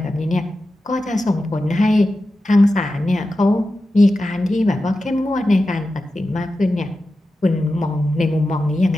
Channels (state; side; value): normal; both; correlation 0.92